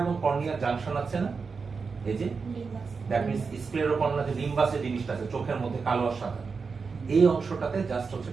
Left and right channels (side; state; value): left; quieter; 5.0 dB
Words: এবং কর্নিয়া জাংশন আছে না, এই যে দ্যাট মিন্স স্ক্লেরোকর্নিয়া যে লিম্বাসের জিনিসটা আছে চোখের মধ্যে কালো আর সাদা, এই অংশটাতে জাস্ট হচ্ছে